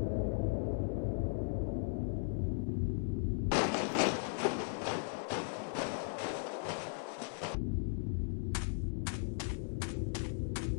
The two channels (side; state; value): right; silent; digital silence